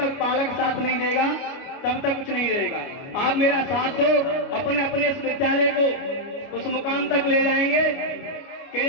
पालक साथ नहीं देगा तब तक कुछ नहीं रहेगा। आप मेरा साथ दो, अपने अपने इस विद्यालय को उस मुकाम तक ले जाएंगे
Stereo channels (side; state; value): right; late; 29 ms